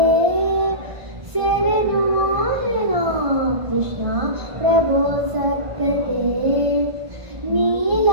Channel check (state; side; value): late; left; 1.5 ms